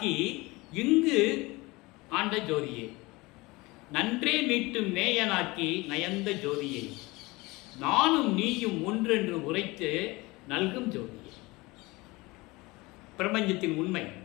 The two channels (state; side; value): quieter; right; 22.7 dB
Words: இங்கு ஆண்ட ஜோதியே, நன்றே மீட்டும் நேயனாக்கி நயந்த ஜோதியை, நானும் நீயும் ஒன்றென்று உரைத்து நல்கும் ஜோதியை. பிரபஞ்சத்தின் உண்மை.